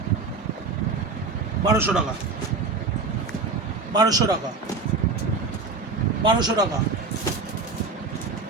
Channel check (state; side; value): quieter; left; 4.1 dB